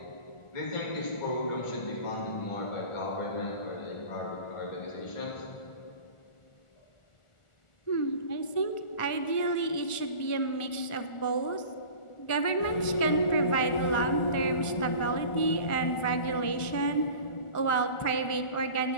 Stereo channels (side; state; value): right; late; 1.4 ms